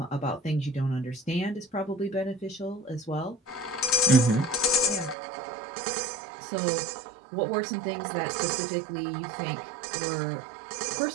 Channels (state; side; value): drops out; left; at 5.2 s